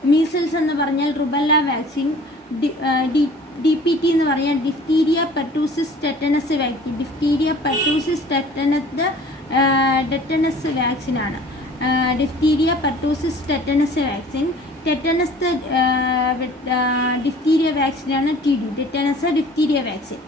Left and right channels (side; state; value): both; normal; correlation 0.48